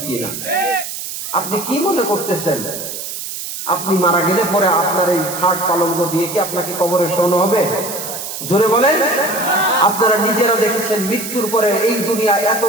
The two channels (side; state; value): right; noise; hiss, 7 dB below the sound